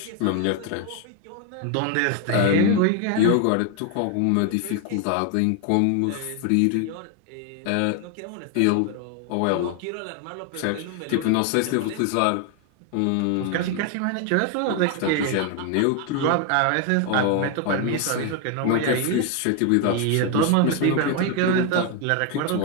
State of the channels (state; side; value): different; both; correlation 0.01